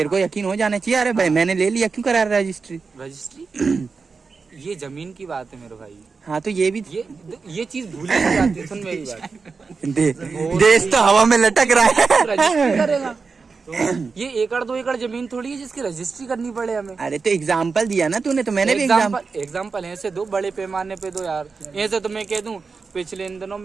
को यकीन हो जाना चाहिए, अरे भाई मैंने ले लिया, क्यों करा रहा रजिस्ट्री? रजिस्ट्री ये जमीन की बात है मेरे भाई। हाँ तो ये भी ये चीज भूल नहीं जाती है। सुन मेरी बात। देश तो हवा में लटक रहा है। रजिस्ट्री करेगा ये 1 एकड़ 2 एकड़ जमीन थोड़ी है जिसकी रजिस्ट्री करनी पड़े हमें। अरे तो एग्जाम्पल दिया ना तूने, तो मैंने भी एग्जाम्पल ऐसे दो, बड़े पैमाने पे दो यार। ऐसे तो मैं कह दूं पिछले इन दिनों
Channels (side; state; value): left; quieter; 4.7 dB